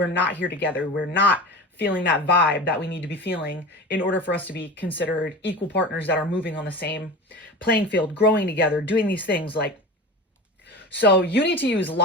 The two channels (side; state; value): both; normal; correlation 0.32